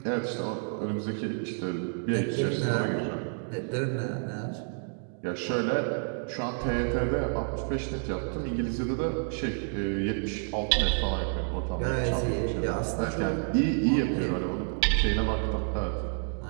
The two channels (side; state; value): left; silent; 58 dB below the other